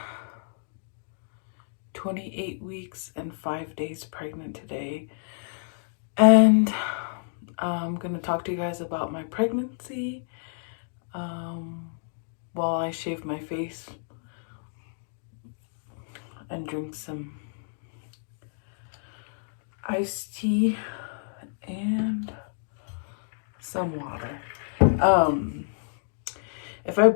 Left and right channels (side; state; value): right; silent; digital silence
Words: 28 weeks and 5 days pregnant today. And I'm gonna talk to you guys about my pregnancy. While I shave my face and drink some iced tea and some water. If I